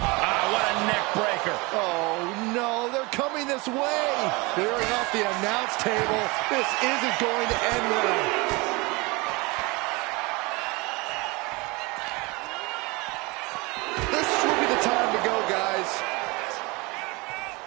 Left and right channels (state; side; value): quieter; left; 25.6 dB